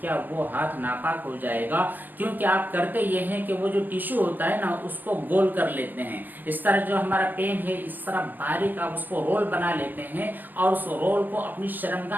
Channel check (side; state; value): left; late; 0.087 ms